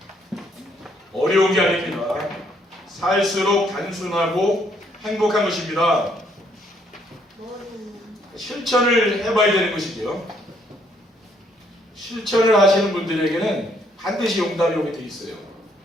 어려운 게 아닙니다. 살수록 단순하고 행복한 것입니다. 실천을 해봐야 되는 것이죠. 실천을 하시는 분들에게는 반드시 응답이 오게 돼 있어요.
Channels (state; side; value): normal; both; correlation 0.69